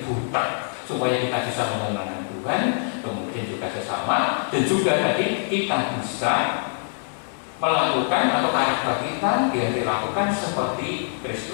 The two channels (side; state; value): right; silent; digital silence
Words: buta, supaya kita bisa menyenangkan Tuhan, kemudian juga sesama, dan juga tadi kita bisa melakukan atau karakter kita yang dilakukan seperti